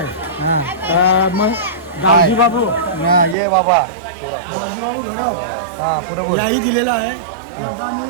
हां मग गावजी बाबू हां ये बाबा गावजी बाबू घरी हां बरोबर याही दिलेला आहे त्यांचा आम्ही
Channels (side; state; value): left; drops out; at 3.4 s